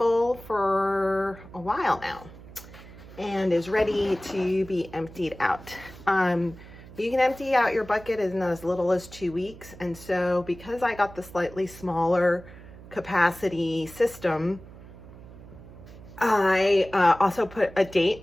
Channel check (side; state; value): right; noise; hum, 18 dB below the sound